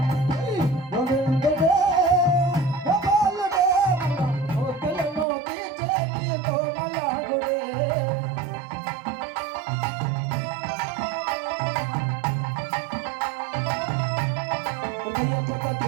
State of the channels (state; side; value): drops out; left; at 5.2 s